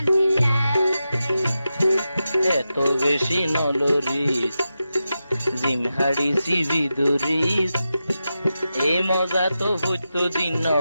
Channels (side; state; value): both; inverted; correlation -0.90